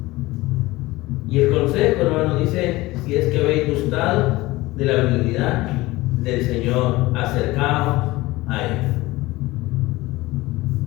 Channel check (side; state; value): right; quieter; 19.6 dB